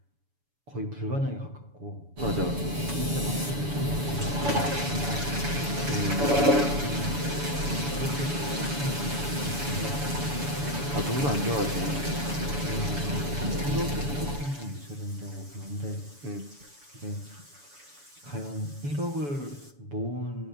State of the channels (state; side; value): late; left; 7.0 ms